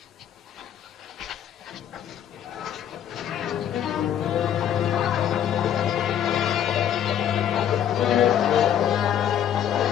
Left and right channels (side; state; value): right; quieter; 9.8 dB